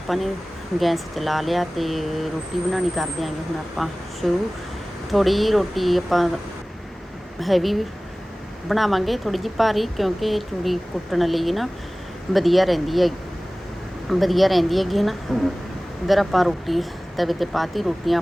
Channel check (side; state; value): both; normal; correlation 0.98